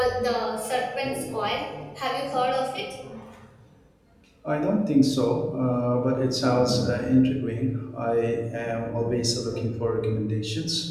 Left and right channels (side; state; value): both; identical; correlation 1.00